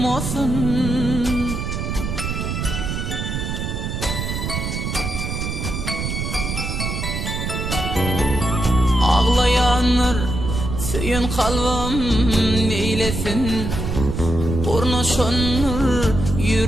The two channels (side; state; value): right; noise; rumble, 3 dB below the sound